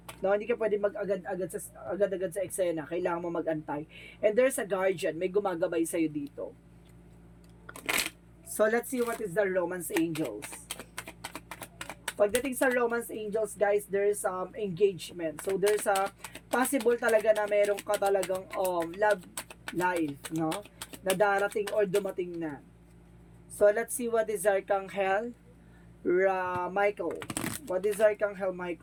No, hindi ka pwede agad-agad sa eksena. Kailangan mo mag-antay. And there's a guardian. May gumagabay sa'yo dito. So, let's see what is the romance angels. Pagdating sa romance angels, guys, there's engagement. So, there's a possible talaga na meron ka talagang love life, no? Na darating or dumating na. So, let's see what is Archangel Michael. What is Archangel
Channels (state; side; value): identical; both; correlation 1.00